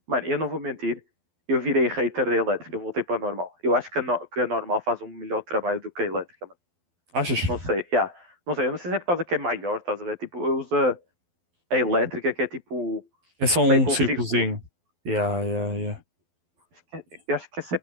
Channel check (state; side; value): late; left; 12 ms